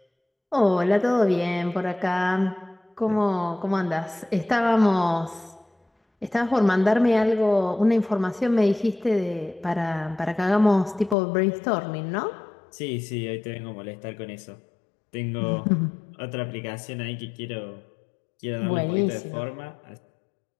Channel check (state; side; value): drops out; right; at 11.2 s